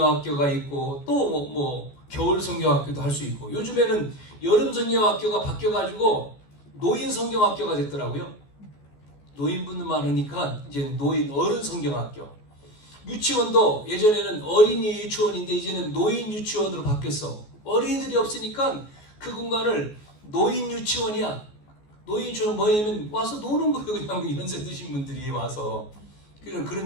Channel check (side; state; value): right; late; 14 ms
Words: 있고 또 뭐 겨울 성경학교도 할 수 있고, 요즘에는 여름 성경학교가 바뀌어가지고 노인 성경학교가 됐더라고요. 노인분들 많으니까 이제 어른 성경학교. 유치원도 예전에는 어린이 유치원인데 이제는 노인 유치원으로 바뀌었어. 어린이들이 없으니까 그 공간을 노인 유치원이야. 노인 유치원 뭐냐면 와서 노는 거예요. 그냥 연세 드신 분들이 와서.